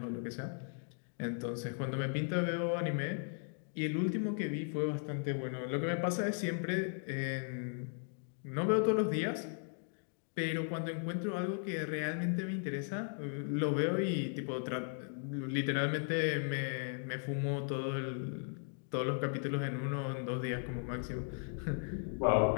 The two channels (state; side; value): silent; right; 53 dB below the other